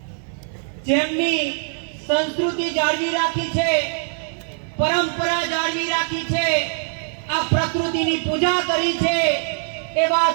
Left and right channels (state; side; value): silent; left; 64 dB below the other